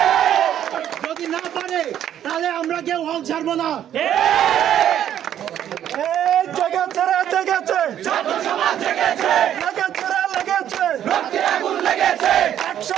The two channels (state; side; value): quieter; left; 10.6 dB